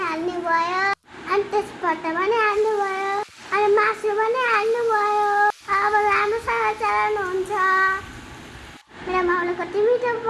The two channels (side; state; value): both; identical; correlation 1.00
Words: भयो, अनि त्यसबाट पनि हाल्नु भयो, अनि मासु पनि हाल्नु भयो। अब राम्रोसँग चलाउनुहुन्छ। मेरो माउले कति मिठो